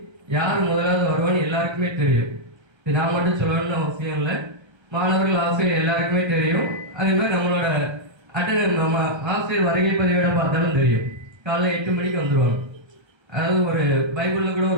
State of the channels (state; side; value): late; left; 1.3 ms